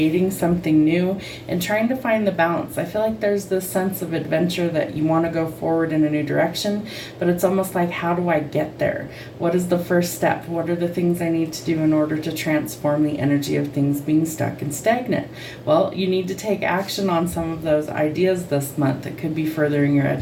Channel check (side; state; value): both; identical; correlation 1.00